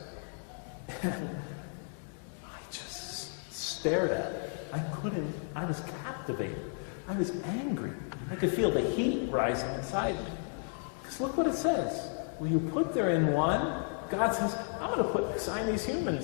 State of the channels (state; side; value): silent; right; 55 dB below the other